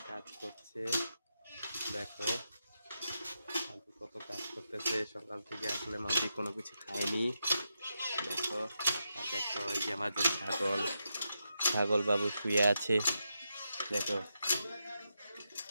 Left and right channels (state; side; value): inverted; both; correlation -0.86